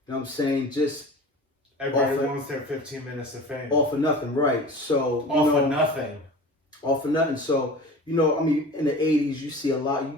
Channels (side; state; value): both; normal; correlation 0.37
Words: know what I'm saying? Just Everybody off wants their 15 minutes of fame. off of nothing, right? So Off of nothing. off of nothing. So I mean, in the '80s, you see a lot.